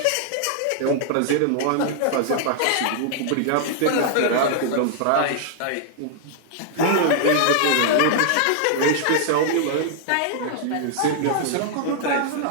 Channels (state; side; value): different; both; correlation -0.01